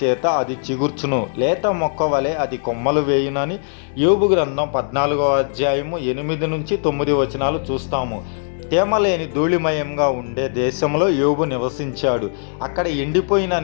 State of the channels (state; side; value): silent; right; digital silence